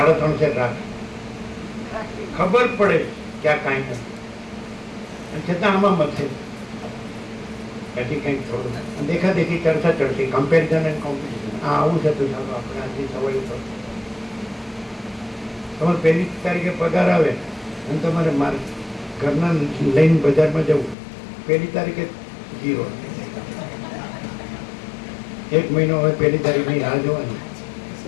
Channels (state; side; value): drops out; right; at 21.0 s